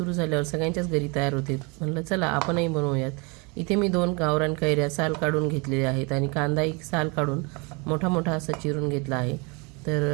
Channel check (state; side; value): quieter; left; 30.1 dB